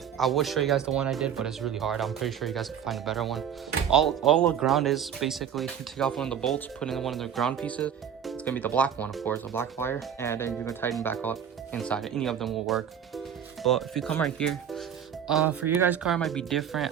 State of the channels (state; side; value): quieter; left; 8.6 dB